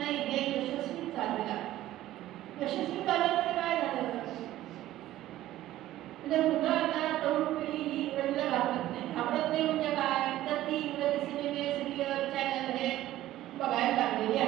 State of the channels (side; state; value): left; quieter; 14.5 dB